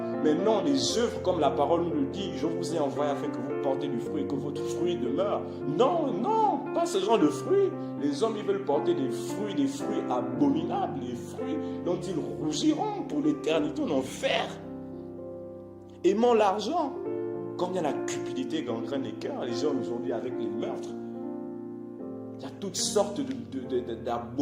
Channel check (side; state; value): both; identical; correlation 1.00